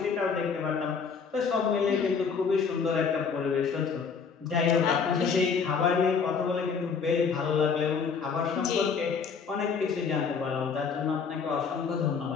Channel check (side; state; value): right; quieter; 5.8 dB